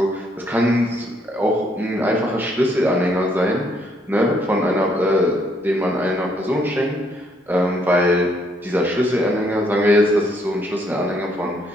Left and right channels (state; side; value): normal; both; correlation 0.70